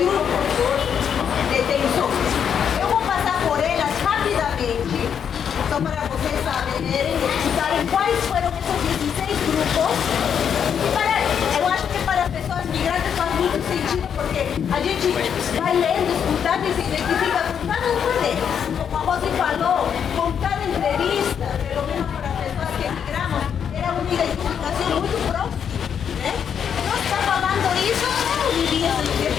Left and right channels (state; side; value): quieter; right; 7.9 dB